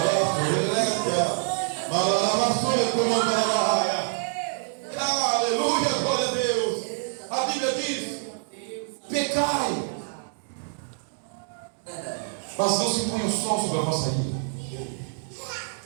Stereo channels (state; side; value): silent; left; digital silence